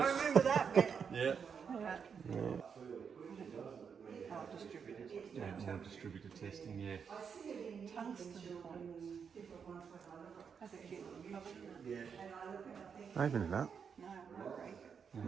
remember that bit. Yeah. Yeah. Yeah. Oh, distributed. Yeah, more distributed testing, yeah. Tungsten coins. That's a cute little cover, isn't it? Open it up. No, I'll break it.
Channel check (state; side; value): quieter; left; 6.6 dB